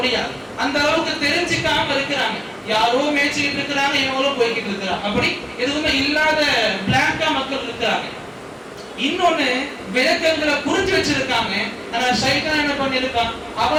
அந்த அளவுக்கு தெரிஞ்சுக்காம இருக்கிறாங்க. யாரோ மேய்ச்சிக்கிட்டு இருக்கிறாங்க, இவங்களும் போய்கிட்டு இருக்கிறாங்க. அப்படி எதுவுமே இல்லாத பிளாங்கா மக்கள் இருக்கிறாங்க. இன்னொன்னு, விளக்கங்களை புரிஞ்சு வச்சிருக்காங்க, ஆனா ஷைத்தான் என்ன பண்ணிருக்கான்,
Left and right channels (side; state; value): both; identical; correlation 1.00